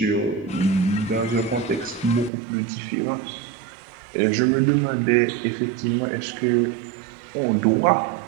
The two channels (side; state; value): left; drops out; at 2.3 s